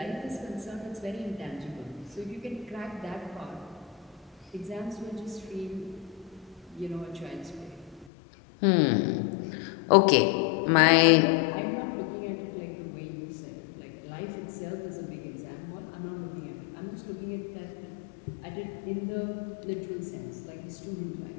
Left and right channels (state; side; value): drops out; right; at 8.1 s